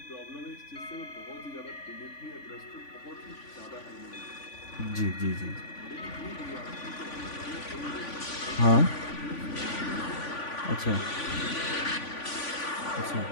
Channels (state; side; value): late; right; 3.5 ms